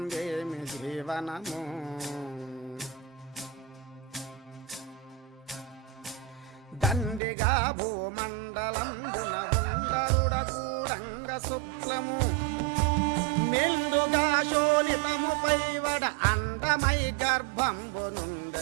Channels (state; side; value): drops out; left; at 7.2 s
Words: ఏమి జీవనము దండిగా భూమండలంబున ఉండరుడ కూడంగ శుక్లము మెండుగా శోణితము పైవడ అండమై గర్భంబు